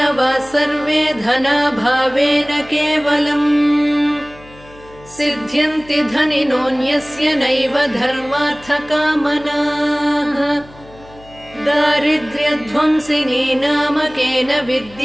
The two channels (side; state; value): left; noise; hum, 22 dB below the sound